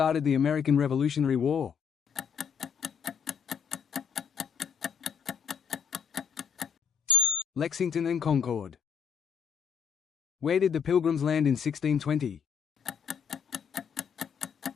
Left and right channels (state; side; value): quieter; right; 6.9 dB